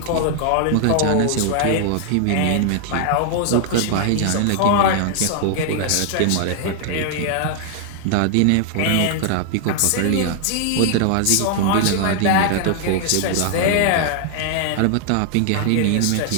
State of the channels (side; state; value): both; different; correlation 0.00